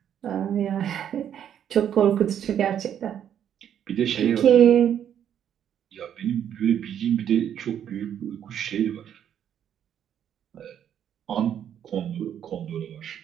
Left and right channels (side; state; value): left; quieter; 9.5 dB